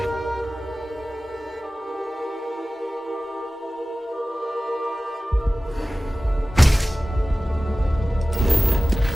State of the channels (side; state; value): both; normal; correlation 0.96